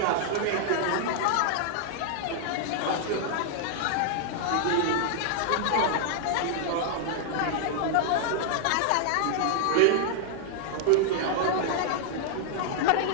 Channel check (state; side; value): different; both; correlation -0.01